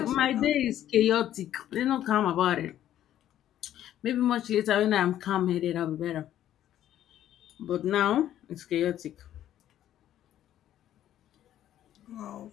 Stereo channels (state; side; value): quieter; right; 11.8 dB